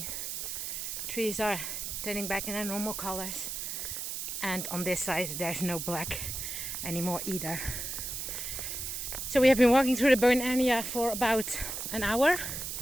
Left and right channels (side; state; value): right; noise; hiss, 4 dB below the sound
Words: trees are turning back in their normal colors. And on this side there's no black anymore either. So we have been walking through the burn area for about an hour